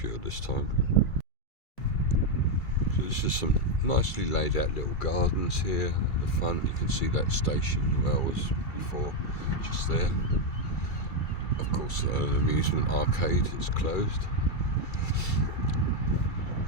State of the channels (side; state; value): right; late; 2.3 ms